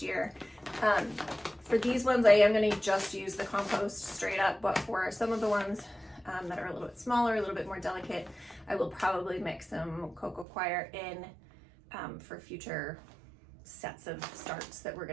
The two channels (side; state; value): left; drops out; at 10.5 s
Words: year. For these ones, I am going to just use the compost straight up, but for some of the ones that are a little bit smaller, a little bit more delicate, I will probably mix some cocoa coir in for future sets of starts that we're